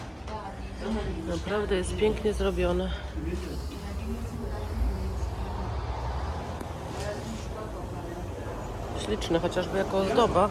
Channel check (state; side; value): identical; both; correlation 1.00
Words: Naprawdę jest pięknie zrobione. Śliczne, chociażby jako ozdoba.